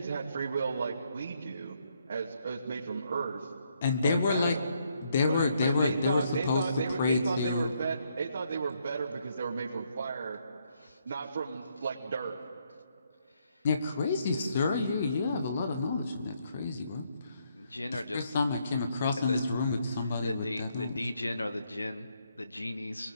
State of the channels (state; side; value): inverted; both; correlation -0.74